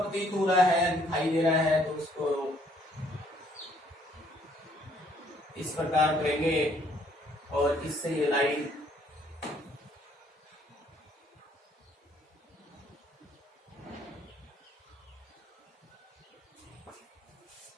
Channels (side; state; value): both; normal; correlation 0.65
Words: हो रहा है, दिखाई दे रहा है, तो उसको इस प्रकार करेंगे और इससे ये लाइन